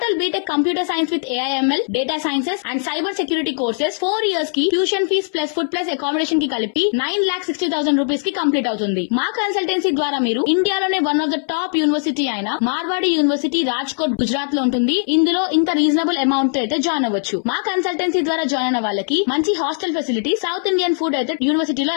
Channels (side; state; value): right; silent; 63 dB below the other